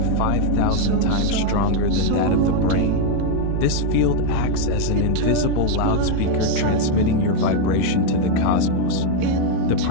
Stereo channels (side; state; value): both; different; correlation 0.01